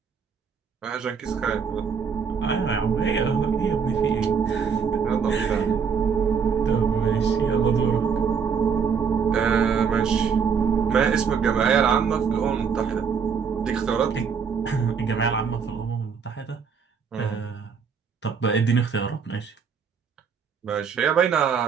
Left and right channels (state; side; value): quieter; left; 6.4 dB